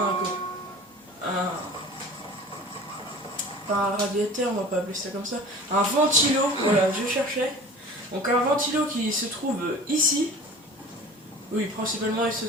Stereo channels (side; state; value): both; normal; correlation 0.41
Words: Pas un radiateur, on va pas appeler ça comme ça, un ventilo, voilà, je cherchais. Donc un ventilo qui se trouve ici. Oui, principalement il se